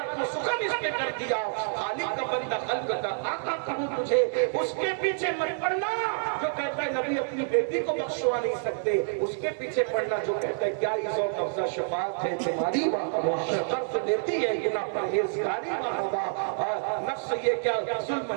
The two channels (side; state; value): left; silent; digital silence